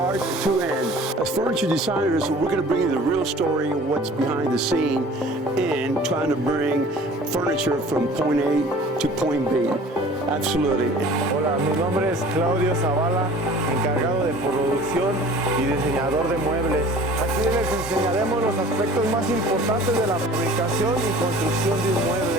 to end. As furniture designers, we're going to bring you the real story of what's behind the scene and trying to bring furniture from point A to point B. Absolutely. Hola, mi nombre es Claudio Zavala, encargado de producción y diseñador de muebles. Aquí les enseñaremos los aspectos más importantes de la fabricación y construcción de un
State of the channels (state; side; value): normal; both; correlation 0.46